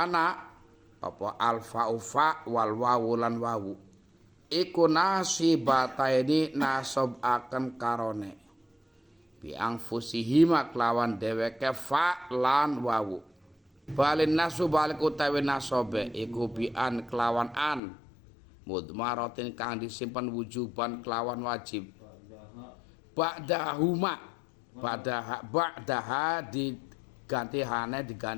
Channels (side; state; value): right; drops out; at 17.8 s